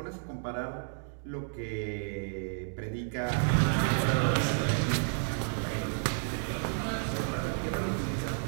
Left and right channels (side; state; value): left; silent; digital silence